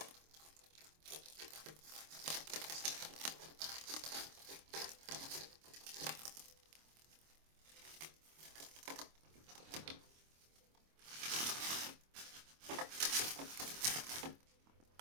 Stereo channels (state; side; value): late; left; 25 ms